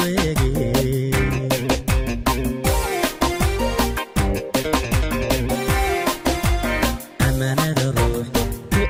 amanada ruux ku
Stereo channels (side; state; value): both; identical; correlation 1.00